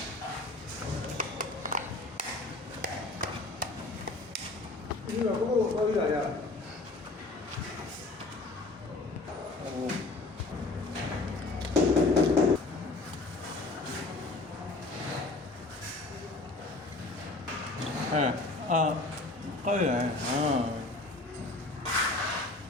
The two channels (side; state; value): right; quieter; 3.1 dB